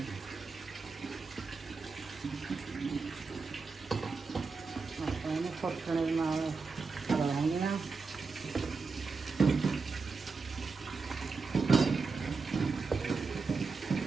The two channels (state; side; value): quieter; left; 4.5 dB